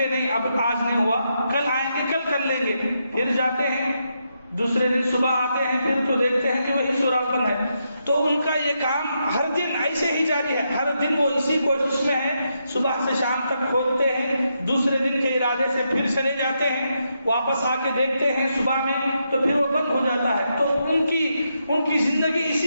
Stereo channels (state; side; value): inverted; both; correlation -0.82